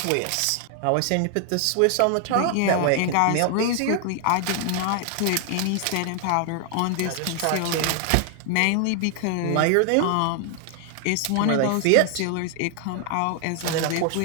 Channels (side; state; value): both; different; correlation 0.00